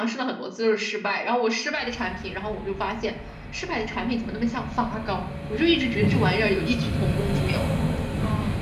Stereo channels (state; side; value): identical; both; correlation 1.00